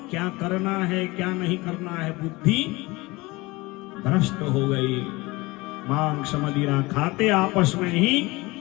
क्या करना है क्या नहीं करना है, बुद्धि भ्रष्ट हो गई। मांस मदिरा खाते आपस में ही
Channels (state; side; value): quieter; right; 22.5 dB